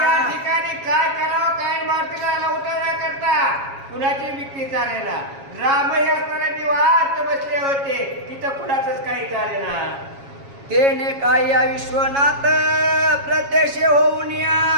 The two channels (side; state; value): left; late; 7.3 ms